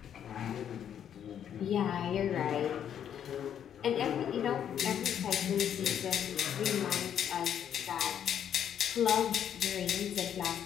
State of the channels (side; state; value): right; quieter; 9.3 dB